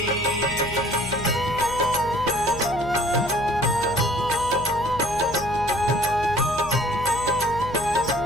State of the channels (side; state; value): left; noise; hum, 12 dB below the sound